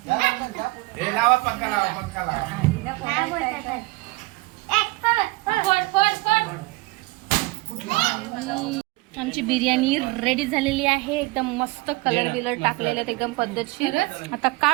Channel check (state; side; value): quieter; left; 23.4 dB